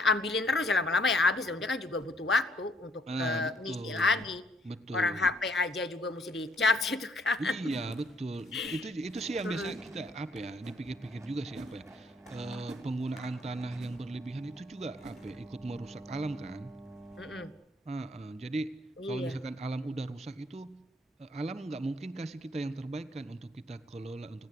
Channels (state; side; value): normal; both; correlation 0.66